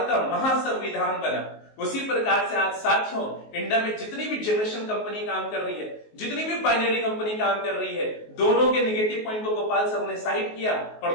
का महासंविधान बना। उसी प्रकार से आज साथियों इंडिया में जितनी भी जनरेशन कंपनी काम कर रही है, जितनी भी बाइनरी कंपनी काम कर रही है, दोनों के नेगेटिव पॉइंट को गोपाल सर ने साइड किया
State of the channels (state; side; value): late; right; 19 ms